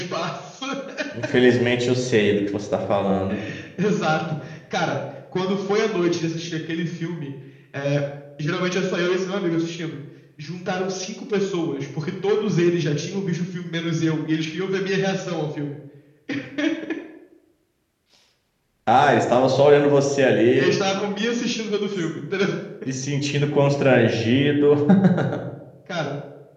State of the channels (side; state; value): both; identical; correlation 1.00